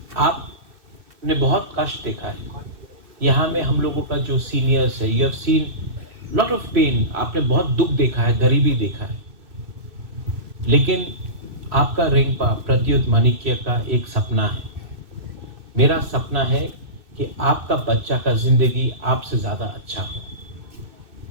आपने बहुत कष्ट देखा है। यहाँ में हम लोगों का जो सीनियर्स है, you have seen lot of pain, आपने बहुत दुख देखा है, गरीबी देखा है। लेकिन आपका रेंगपा प्रत्युत माणिक्य का एक सपना है। मेरा सपना है कि आपका बच्चा का जिंदगी आपसे ज्यादा अच्छा हो।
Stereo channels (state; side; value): late; left; 2.6 ms